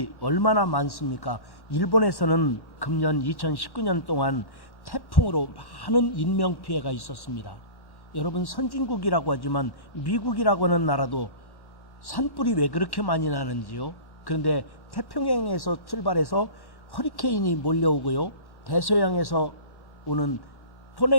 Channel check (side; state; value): right; late; 1.1 ms